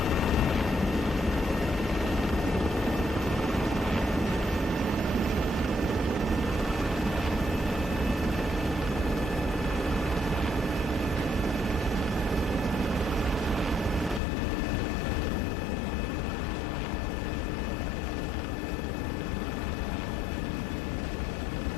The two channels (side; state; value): right; drops out; at 14.2 s